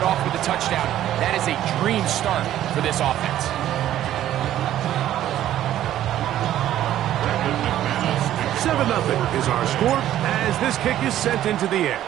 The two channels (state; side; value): quieter; left; 12.4 dB